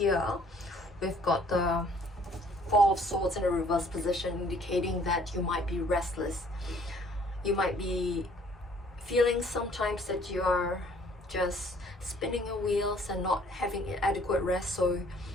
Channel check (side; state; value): both; normal; correlation 0.59